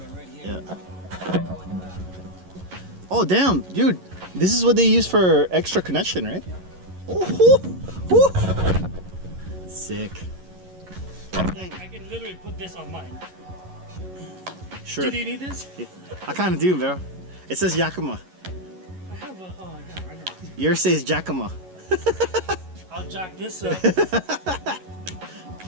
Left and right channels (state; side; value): late; left; 11 ms